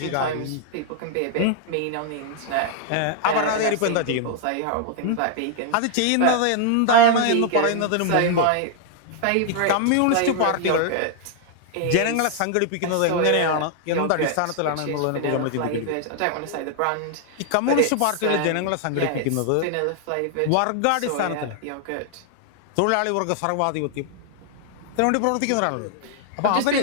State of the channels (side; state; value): both; different; correlation 0.00